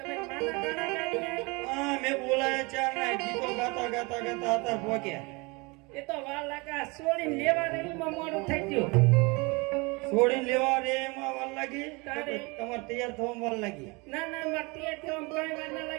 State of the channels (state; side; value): quieter; left; 27.4 dB